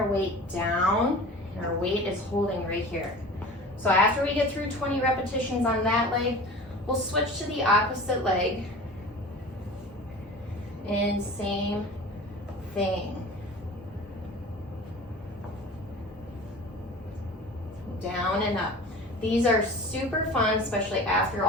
weight down, and our weight is holding right here. So after we get through 20 repetitions on that leg, we'll switch to the opposite leg. And same thing. Down and up. These are super fun, especially after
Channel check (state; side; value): normal; both; correlation 0.39